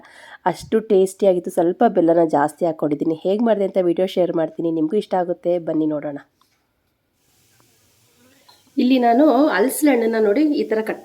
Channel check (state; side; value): identical; both; correlation 1.00